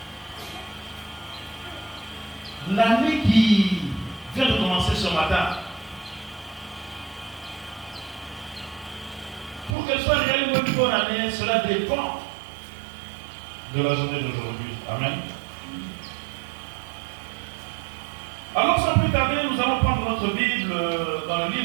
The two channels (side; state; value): left; drops out; at 9.8 s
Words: L'année qui vient de commencer ce matin, pour qu'elle soit réellement une bonne année, cela dépend de la journée d'aujourd'hui. Amen. Alors sans plus tarder, nous allons prendre notre Bible dans le